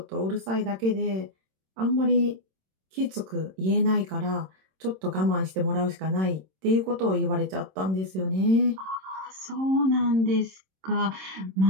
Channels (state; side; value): late; left; 26 ms